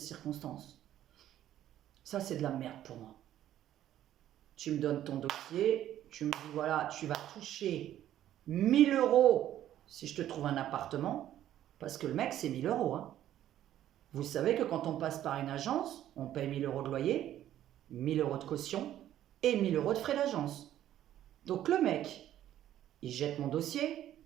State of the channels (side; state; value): left; quieter; 12.1 dB